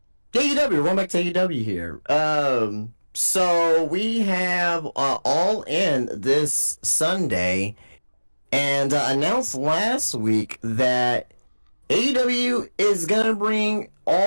AEW. We're going back to AEW here. So we have All In this Sunday, and announced last week that AEW is gonna bring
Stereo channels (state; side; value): inverted; both; correlation -1.00